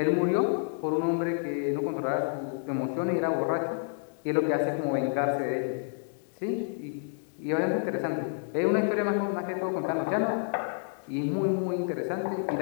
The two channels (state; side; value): silent; right; 58 dB below the other